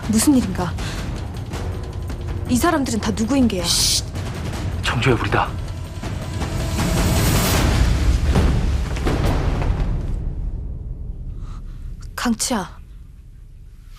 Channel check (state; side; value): identical; both; correlation 1.00